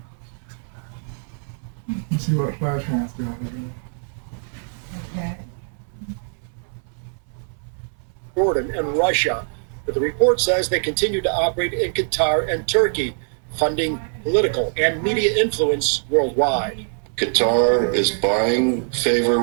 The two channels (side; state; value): left; silent; 63 dB below the other